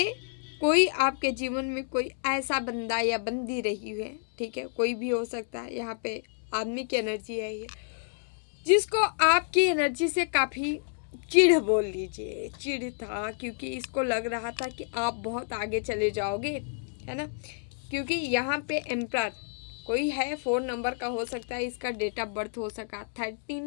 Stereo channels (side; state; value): right; silent; digital silence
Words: कोई आपके जीवन में कोई ऐसा बंदा या बंदी रही है, ठीक है, कोई भी हो सकता है, यहाँ पे आदमी की एनर्जी है ये, जिसको आपकी एनर्जी से काफ़ी चिढ़ बोल लीजिए, चिढ़ था, क्योंकि इसको लग रहा था कि आप बहुत आगे चले जाओगे, है ना, क्योंकि यहाँ पे एम्परर कोई है, 4 नंबर का हो सकता है, इसका डेट ऑफ बर्थ हो सका